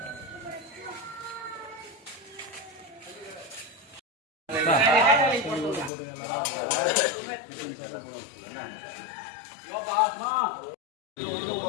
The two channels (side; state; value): right; drops out; at 5.9 s